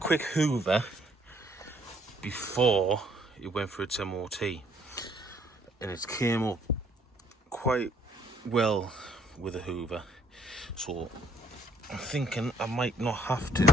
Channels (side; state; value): both; normal; correlation 0.64